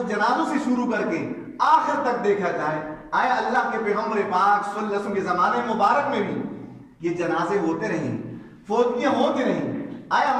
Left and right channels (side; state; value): both; identical; correlation 1.00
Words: جنازوں سے شروع کر کے آخر تک دیکھا جائے, آیا اللہ کے پیغمبر پاک صلی اللہ علیہ وسلم کے زمانے مبارک میں بھی یہ جنازے ہوتے رہیں, فوتگیاں ہوتی رہیں. آیا